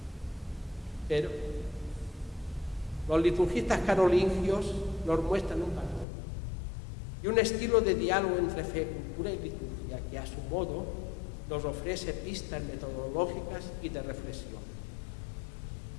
pero los liturgistas carolingios nos muestran un patrón y un estilo de diálogo entre fe, cultura y liturgia que a su modo nos ofrece pistas metodológicas y de reflexión.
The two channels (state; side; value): drops out; right; at 6.1 s